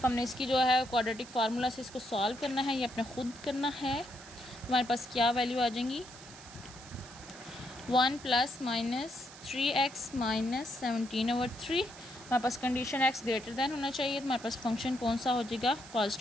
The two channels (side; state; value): right; noise; hiss, 17 dB below the sound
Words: इसकी जो है क्वाड्रेटिक फार्मूला से इसको सॉल्व करना है, ये अपने खुद करना है। हमारे पास क्या वैल्यू आ जाएंगी, 1 प्लस माइनस 3x माइनस 17/3। हमारे पास कंडीशन x ग्रेटर दैन होना चाहिए, तो हमारे पास फंक्शन कौन सा हो जाएगा,